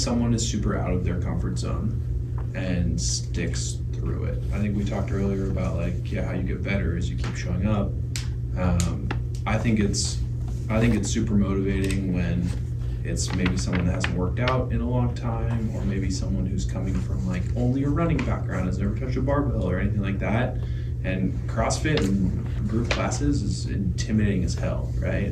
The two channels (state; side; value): identical; both; correlation 1.00